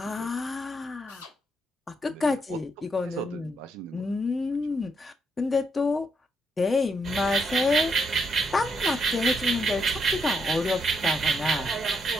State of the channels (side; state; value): both; normal; correlation 0.78